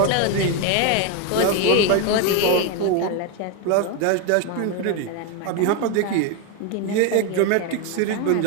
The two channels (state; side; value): different; both; correlation 0.02